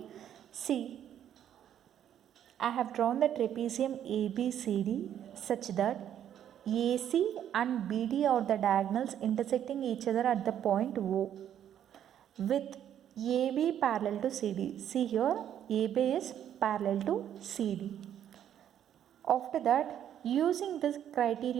see, I have drawn the trapezium ABCD such that AC and BD are the diagonals intersecting each other at the point O with AB parallel to CD. See here, AB is parallel to CD. After that, using this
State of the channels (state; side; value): quieter; left; 10.1 dB